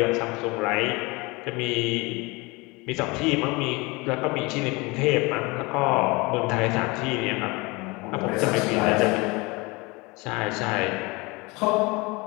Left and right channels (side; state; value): right; quieter; 25.3 dB